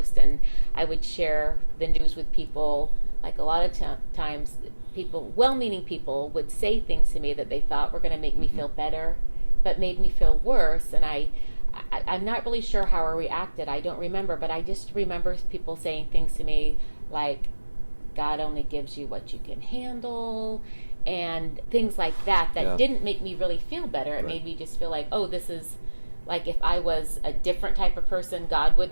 and I would share the news with people. Like a lot of times people, well-meaning people, would say things to me that they thought were going to make me feel better, but made me feel worse. And I'm not really sure how I reacted. I don't remember, but I just remember people saying things to me like, God only gives you what you can handle, and things like that didn't make me really feel better. It made me just feel like, oh, this is like, if I was a different type of person, God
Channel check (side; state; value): both; inverted; correlation -1.00